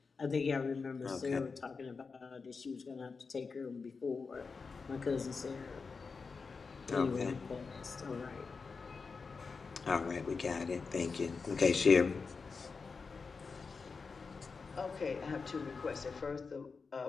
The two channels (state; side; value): quieter; right; 4.8 dB